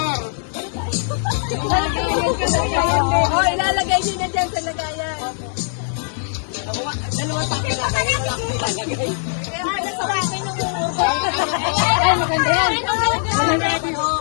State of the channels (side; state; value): right; silent; digital silence